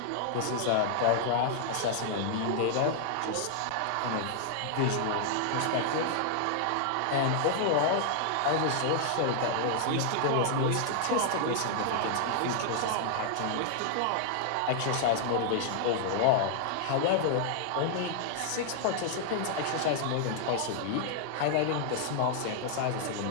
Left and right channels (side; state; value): both; different; correlation -0.01